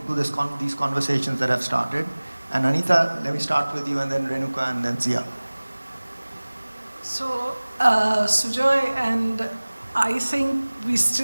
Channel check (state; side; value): inverted; both; correlation -1.00